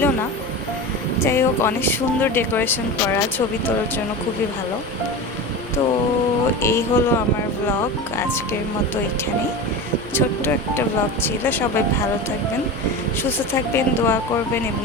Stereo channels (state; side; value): normal; both; correlation 0.27